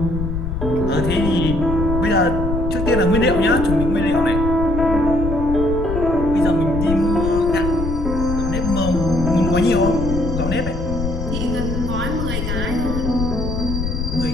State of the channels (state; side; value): noise; left; rumble, 3 dB below the sound